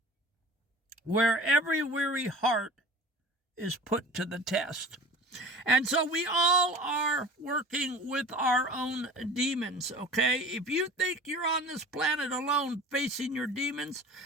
where every weary heart is put to the test. And so we all are working with our own demons, okay? If you think you're on this planet alone facing your demons,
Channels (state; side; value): normal; both; correlation 0.40